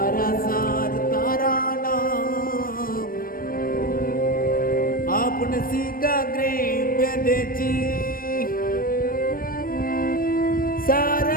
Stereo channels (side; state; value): right; late; 0.41 ms